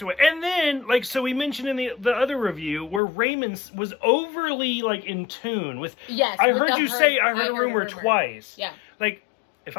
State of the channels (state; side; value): drops out; right; at 3.0 s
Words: away. And then, like, so we mentioned in the other review where Raymond was overly, like, in tune with... Yes. I heard you say I heard a rumor twice. Yeah. Like, if